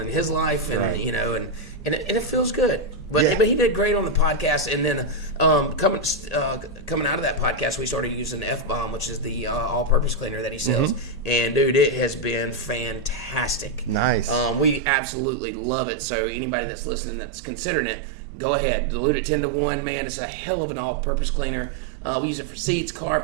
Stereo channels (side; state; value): left; drops out; at 14.8 s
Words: his life, and and it feels good. But he did great on the podcast, and then coming out of that podcast, we started using F-Bomb, which is the all-purpose cleaner that he sells. And dude, it has been fantastic. Nice. We absolutely love it. So anybody that's listening that's considering it, go ahead, dilute it 10 to 1. Man, it's a hell of an all-purpose cleaner. We use it for seats,